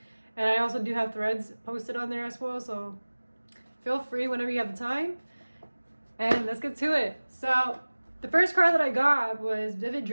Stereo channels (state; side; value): inverted; both; correlation -1.00